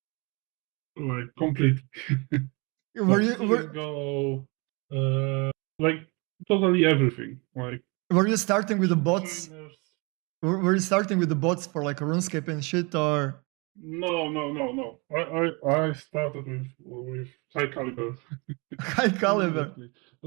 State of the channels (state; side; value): quieter; left; 29.2 dB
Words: complete. Go totally everything. Were you starting with the bots? Trainers. Were you starting with the bots for like RuneScape and shit, or? No. I started with high caliber. High caliber.